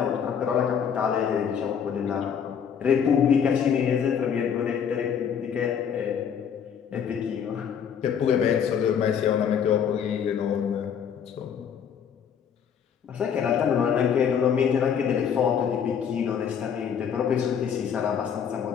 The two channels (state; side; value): quieter; right; 7.7 dB